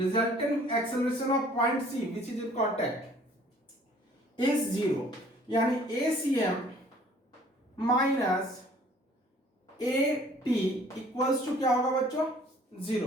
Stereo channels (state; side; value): normal; both; correlation 0.55